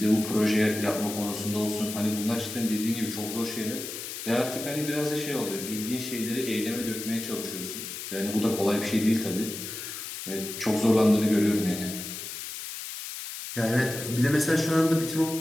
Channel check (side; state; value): left; noise; hiss, 8 dB below the sound